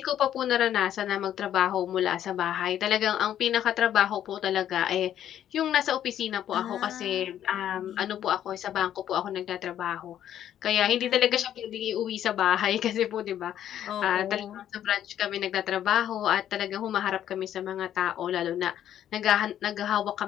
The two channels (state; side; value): quieter; right; 10.8 dB